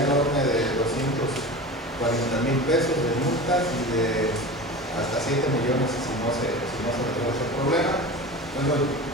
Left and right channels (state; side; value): normal; both; correlation 0.32